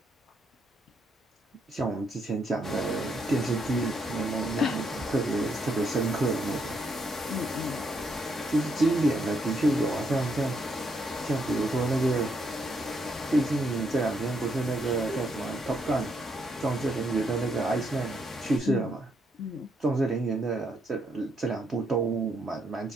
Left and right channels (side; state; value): both; normal; correlation 0.75